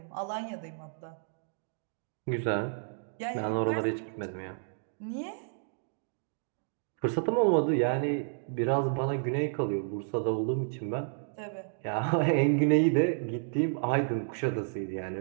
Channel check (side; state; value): left; silent; digital silence